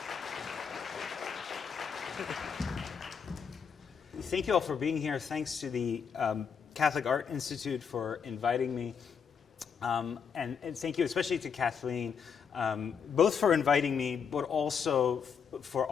Thank you all for being here. Thanks to the Catholic Art Institute for inviting me. And thank you especially to Kathleen, both for inviting me, but also for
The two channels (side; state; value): right; quieter; 6.7 dB